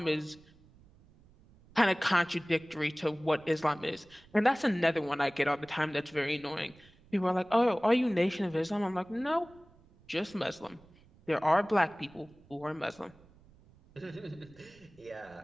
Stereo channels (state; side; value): noise; right; rumble, 27 dB below the sound